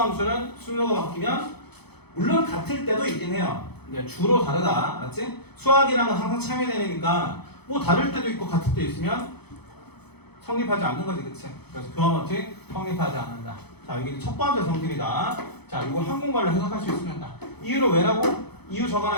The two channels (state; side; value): late; right; 0.98 ms